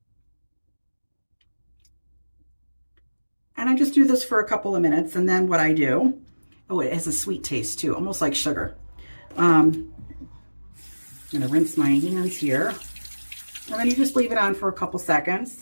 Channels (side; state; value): both; inverted; correlation -1.00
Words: And I just do this for a couple of minutes. And then what I do, oh, it has a sweet taste too, almost like sugar. I'm gonna rinse my hands here. And then you just leave it on for a couple